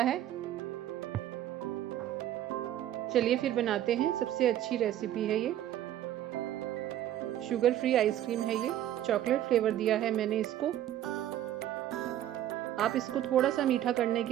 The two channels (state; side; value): quieter; left; 12.2 dB